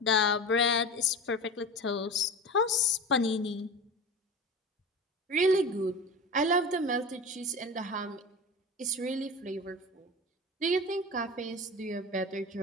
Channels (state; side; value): normal; both; correlation 0.30